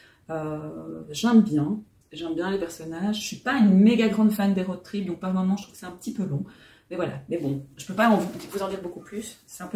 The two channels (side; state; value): both; identical; correlation 1.00